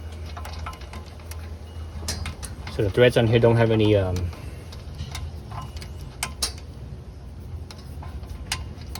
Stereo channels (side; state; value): both; identical; correlation 1.00